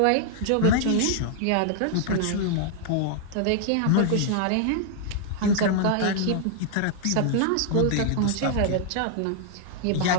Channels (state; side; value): different; both; correlation -0.01